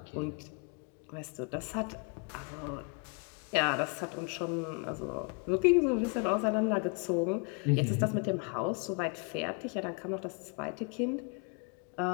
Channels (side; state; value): right; quieter; 36.0 dB